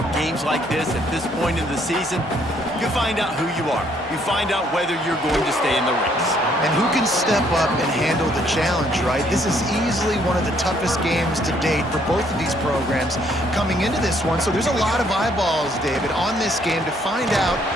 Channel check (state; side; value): normal; both; correlation 0.67